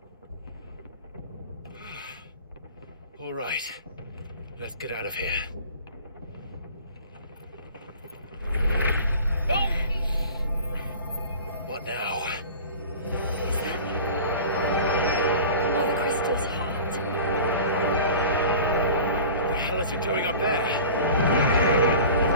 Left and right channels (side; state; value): both; inverted; correlation -0.40